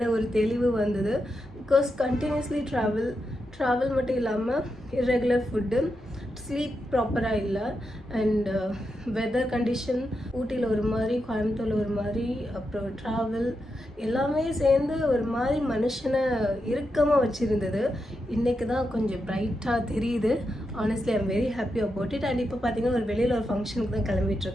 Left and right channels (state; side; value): normal; both; correlation 0.86